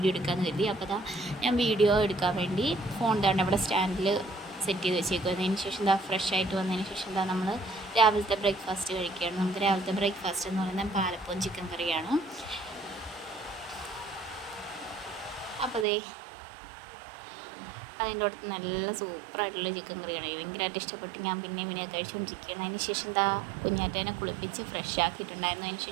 എടുക്കാമെന്ന് കരുതി. അപ്പോൾ ഞാൻ വീഡിയോ എടുക്കാൻ വേണ്ടി ഫോൺ തന്നെ അവിടെ സ്റ്റാൻഡിൽ സെറ്റ് ചെയ്ത് വെച്ചേക്കും. അതിന് ശേഷം ഫ്രഷ് ആയിട്ട് വന്നതിന് ശേഷം നമ്മൾ രാവിലത്തെ ബ്രേക്ക്ഫാസ്റ്റ് കഴിക്കുകയാണ്. നമുക്ക് രാവിലത്തെ ബ്രേക്ക്ഫാസ്റ്റ് എന്ന് പറയുന്നത് പാലപ്പവും ചിക്കൻ കറിയാണ്. അപ്പോൾ അതിൻ്റെ അടുത്ത് നല്ല സൂപ്പറായിട്ടുള്ള ചിക്കൻ കറിയാണ്. ഭയങ്കരമായിട്ട് ഇഷ്ടപ്പെട്ട് ഞാൻ പിന്നെ കഴിച്ചുകൊണ്ടിരിക്കുകയാണ്. അതിന് ശേഷം കുഞ്ഞാറ്റേനെ കുളിപ്പിച്ച് ഫ്രഷ് ആക്കിയിട്ടുണ്ടായിരുന്നു. അതിന്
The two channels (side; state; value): left; drops out; at 15.9 s